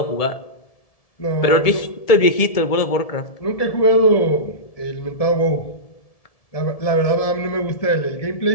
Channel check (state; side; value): late; right; 1.7 ms